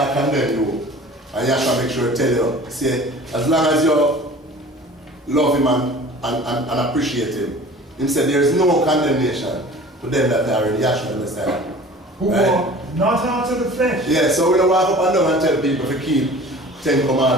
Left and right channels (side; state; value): both; normal; correlation 0.43